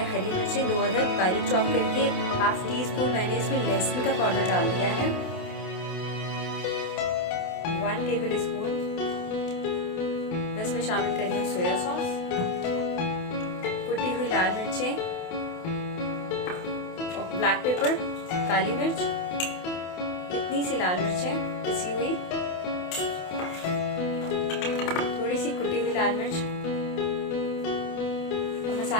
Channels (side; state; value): right; late; 28 ms